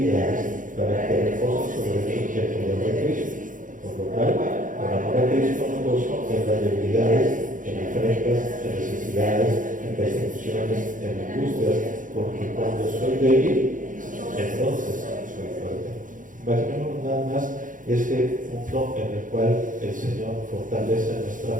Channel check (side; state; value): left; late; 0.38 ms